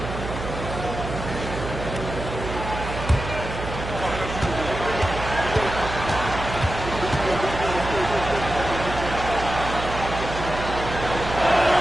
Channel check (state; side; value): noise; right; hum, 7 dB below the sound